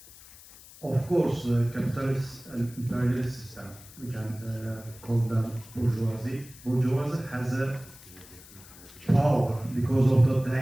Of course, capitalist and imperialist system, we can call them bourgeoisie. Bourgeoisie has a power because of that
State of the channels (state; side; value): noise; left; hiss, 20 dB below the sound